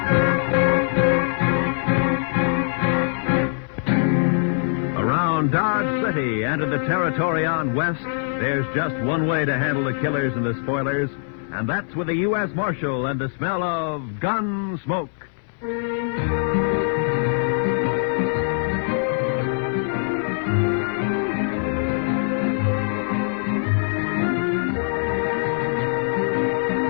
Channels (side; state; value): right; silent; 64 dB below the other